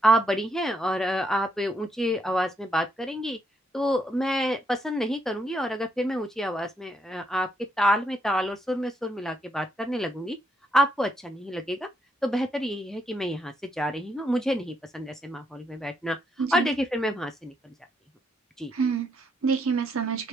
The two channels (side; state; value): both; normal; correlation 0.76